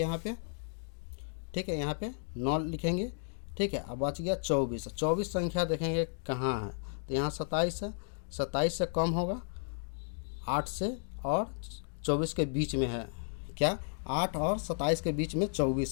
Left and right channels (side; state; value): right; silent; digital silence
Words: पे। ठीक है, यहाँ पे 9 लिखेंगे। ठीक है, अब बच गया 24। 24 संख्या देखेंगे कहाँ है, तो यहाँ 27 है। 27 से कम होगा 8 से और 24 के बीच में है क्या, 8 और 27 के बीच में